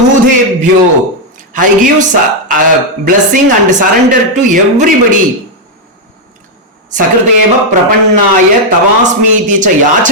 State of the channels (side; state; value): both; normal; correlation 0.00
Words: I give blessing and surrender to everybody. സകൃതേവ പ്രപന്നായ തവാസ്മീതി ച